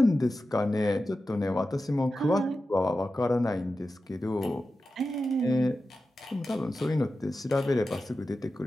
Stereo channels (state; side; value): normal; both; correlation 0.92